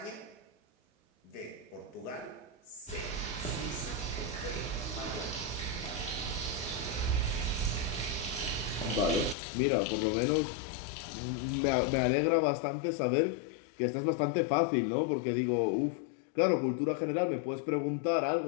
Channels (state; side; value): drops out; right; at 9.3 s